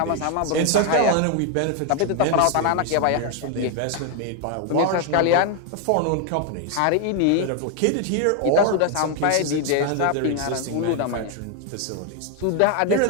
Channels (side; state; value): both; different; correlation 0.00